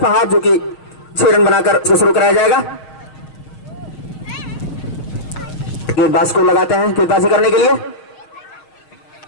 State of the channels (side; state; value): right; late; 6.5 ms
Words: फहाद जो कि 6 रन बनाकर शुरू कराया जाएगा। गेंदबाज को लगाते हैं गेंदबाजी करने के लिए